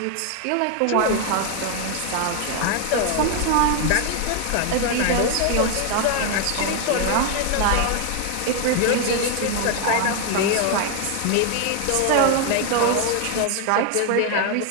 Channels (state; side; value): different; both; correlation 0.01